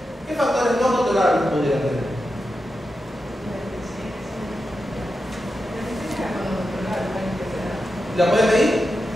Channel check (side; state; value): both; normal; correlation 0.89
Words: ¿qué factores no controlables podrían tener? ¿La pueden medir?